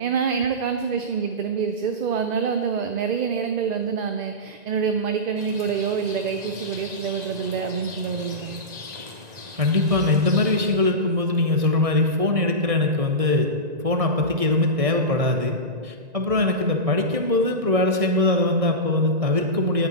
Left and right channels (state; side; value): late; left; 1.9 ms